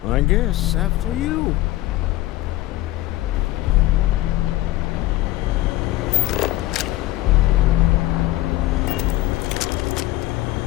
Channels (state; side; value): quieter; right; 16.8 dB